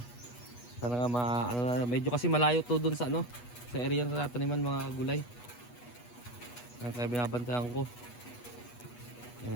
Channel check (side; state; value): right; late; 8.2 ms